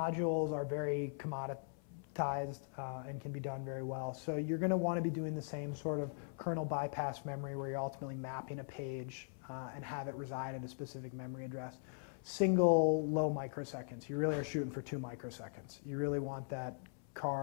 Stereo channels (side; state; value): right; silent; 51 dB below the other